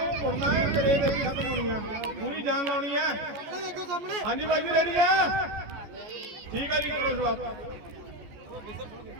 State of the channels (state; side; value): late; left; 14 ms